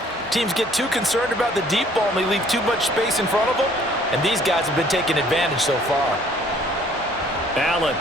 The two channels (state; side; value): normal; both; correlation 0.58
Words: teams get too concerned about the deep ball and they leave too much space in front of them, and these guys have been taking advantage so far. Allen